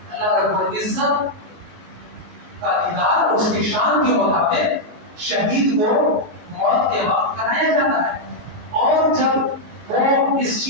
اللہ رب العزت کا دیدار اس کی شان کے مطابق شہید کو موت کے وقت کرایا جاتا ہے. اور جب وہ اس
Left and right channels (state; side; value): late; left; 18 ms